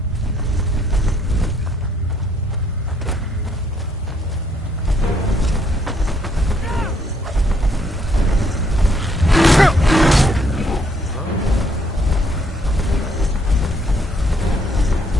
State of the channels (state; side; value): normal; both; correlation 0.70